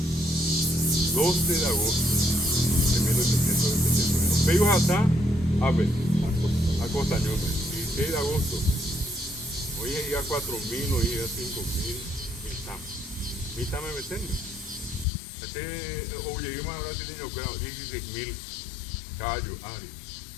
12 de agosto de 1871. Pegos hasta a ver, a Costañón, 16 de agosto. Hoy es ya 4.000, hoy es 5.000, mitad me meten. Oye, yo me habrá tenido 16.000 caballos, Ari.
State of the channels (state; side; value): drops out; right; at 15.1 s